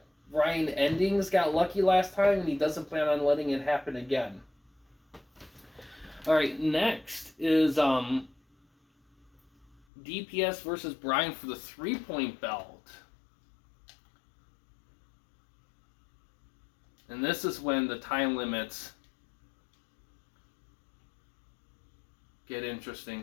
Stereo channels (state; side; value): drops out; right; at 9.9 s